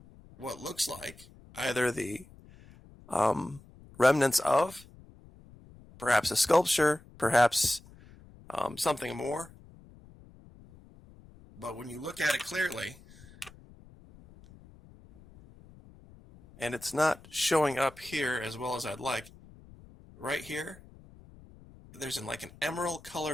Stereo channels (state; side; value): noise; left; rumble, 23 dB below the sound